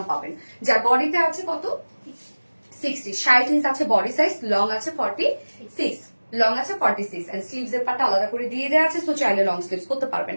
পাবেন। যার বডিতে আছে কত 60 ইঞ্চ আছে বডি সাইজ, লং আছে 46, লং আছে 46 এন্ড স্লিভস এর পাটা আলাদা করে দিয়ে দেওয়া আছে, সো চাইলে লং স্লিভস করতে পারবেন।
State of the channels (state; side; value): inverted; both; correlation -1.00